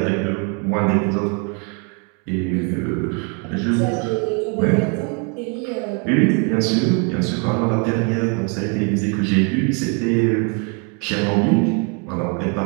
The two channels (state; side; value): quieter; left; 35.2 dB